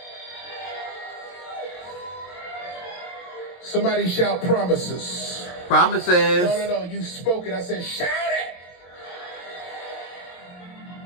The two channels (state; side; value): late; right; 22 ms